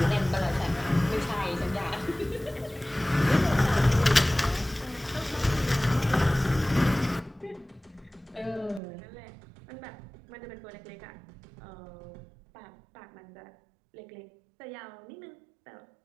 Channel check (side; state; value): left; drops out; at 8.8 s